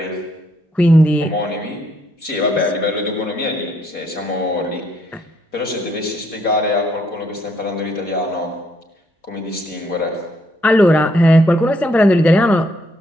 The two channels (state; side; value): normal; both; correlation 0.71